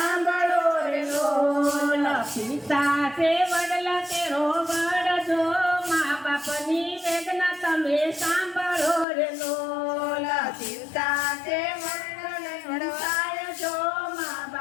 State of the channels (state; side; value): drops out; right; at 9.1 s